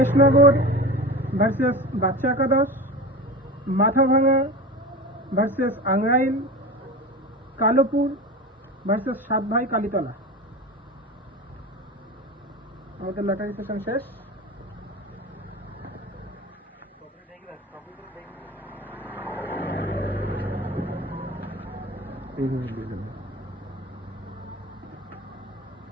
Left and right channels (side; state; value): both; normal; correlation 0.30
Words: ভার্সেস বাচ্চা একাদশ, মাথাভাঙা ভার্সেস আংরাইল, কালোপুর ভার্সেস সাতভাই কালীতলা। আমাদের লটারি সেশন শেষ।